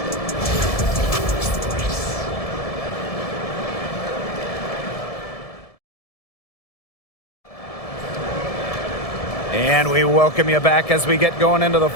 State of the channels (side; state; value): right; late; 1.7 ms